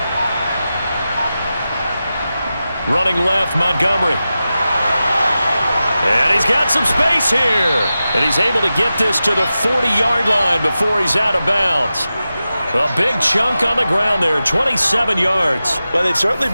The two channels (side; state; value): both; inverted; correlation -0.93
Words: Running left, Montgomery. And he's got some space here. And he's able to get this to the 40-yard line before he's out of bounds. A big chunk on the ground there, 27 yards. Well, they've certainly